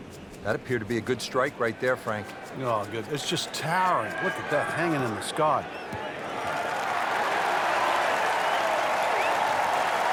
That appeared to be a good strike right there, Frank. Oh, good. It's just towering. Look at that, hanging in the sky.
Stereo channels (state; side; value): identical; both; correlation 1.00